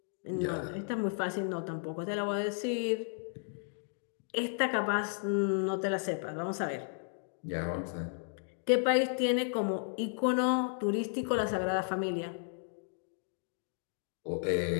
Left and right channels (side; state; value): right; silent; digital silence